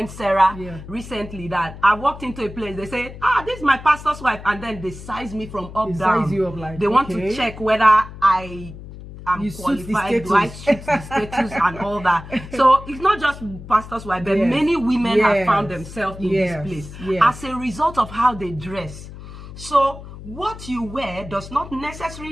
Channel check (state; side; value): noise; left; hum, 14 dB below the sound